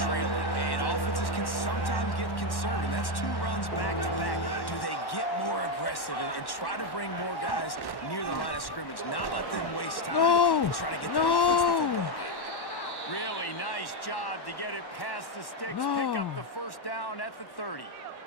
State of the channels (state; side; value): late; right; 1.1 ms